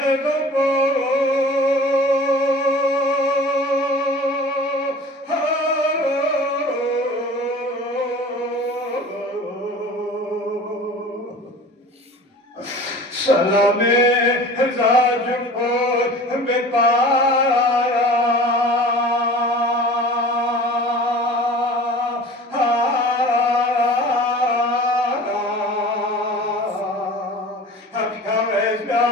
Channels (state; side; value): normal; both; correlation 0.41